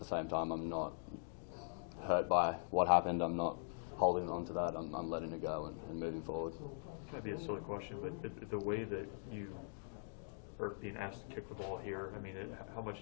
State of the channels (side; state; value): right; silent; digital silence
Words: same time I'm not hurt by what happened. I'm not holding on to that. I'm letting it go and moving forward. Might be a silly question, but the way that you are being asked to kick the ball here, I mean, how